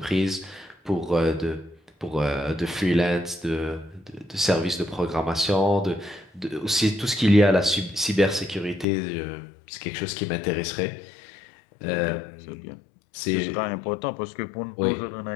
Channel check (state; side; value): drops out; right; at 8.8 s